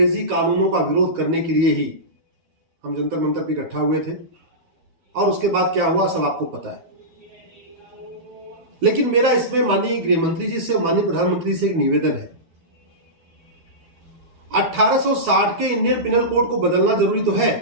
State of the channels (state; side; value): late; left; 12 ms